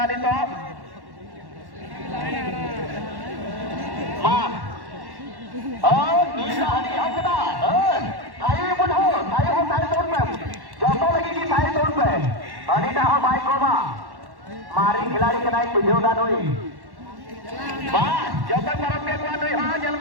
दी तो मां नीला हरी हकदा थाई बुढ़ो थाई हो थाई तोड़ पे जो तो लगेगी थाई तोड़ पे अनिता हो भाई को मारी खिलाड़ी के नाई तुझे उड़ा दोई वाह जो तक मरम के कुआ दोई हाँ जल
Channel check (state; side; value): late; left; 1.1 ms